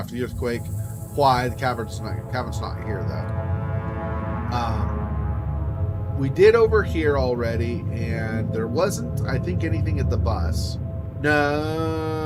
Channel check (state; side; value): identical; both; correlation 1.00